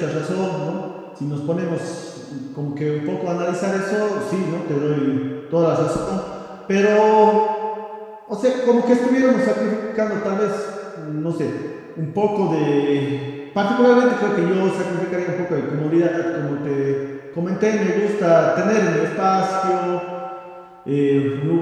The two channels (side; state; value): both; identical; correlation 1.00